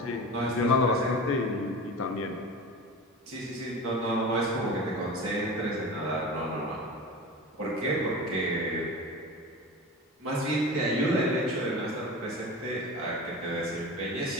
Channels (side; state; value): both; normal; correlation 0.31